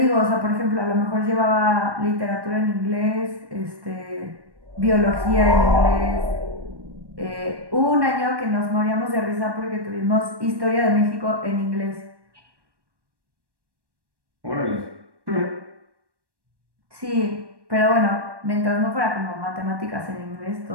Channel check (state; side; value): late; left; 1.1 ms